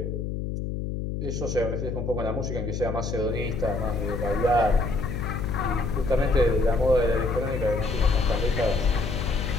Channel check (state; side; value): noise; left; hum, 3 dB below the sound